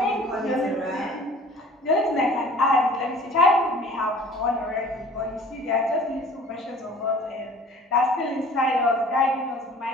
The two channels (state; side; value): normal; both; correlation 0.48